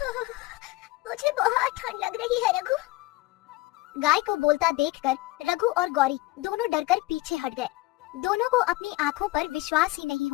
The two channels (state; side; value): quieter; right; 19.6 dB